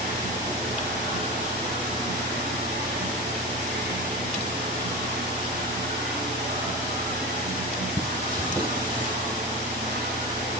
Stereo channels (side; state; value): both; normal; correlation 0.25